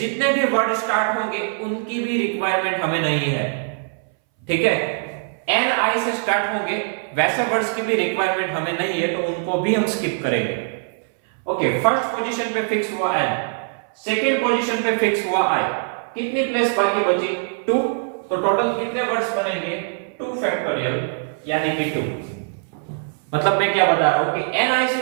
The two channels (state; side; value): silent; left; 61 dB below the other